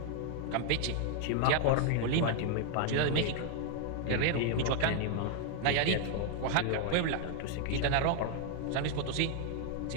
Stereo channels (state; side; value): different; both; correlation 0.00